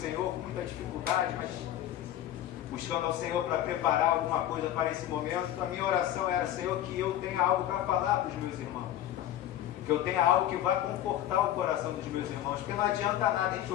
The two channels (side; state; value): right; quieter; 12.5 dB